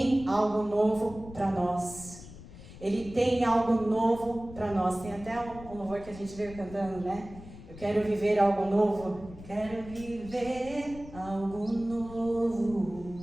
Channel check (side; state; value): left; noise; rumble, 16 dB below the sound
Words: algo novo para nós. Ele tem algo novo para nós. Tem até um louvor que a gente veio cantando, né? Eu quero viver algo novo. Quero viver algo